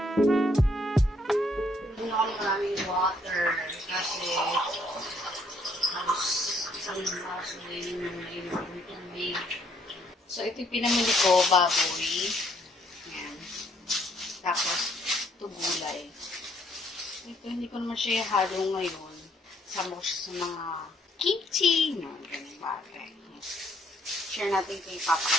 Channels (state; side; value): normal; both; correlation 0.67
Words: Hindi na ako maraming water kasi halos isang baso na yun yung nainom ng tubig. So, ito yung pinamili ko, baboy. Ayan. Tapos, ito gulay. Ito, hindi ko naman siya halo ngayon. Sama ko siya sa mga kimchi. No, ganyan bagay. Share natin kay Papa